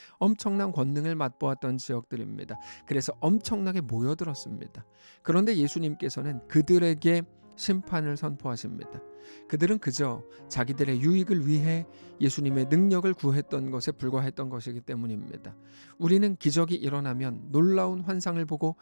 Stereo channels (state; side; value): inverted; both; correlation -1.00